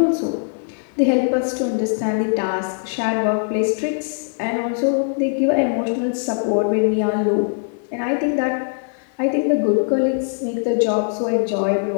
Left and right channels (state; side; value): silent; right; 65 dB below the other